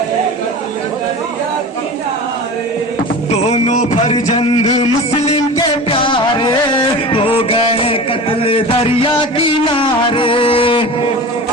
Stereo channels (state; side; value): normal; both; correlation 0.33